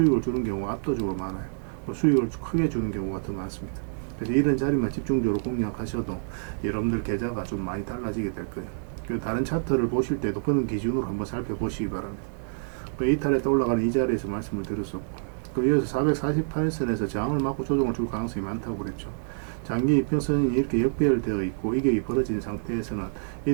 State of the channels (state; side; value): silent; left; digital silence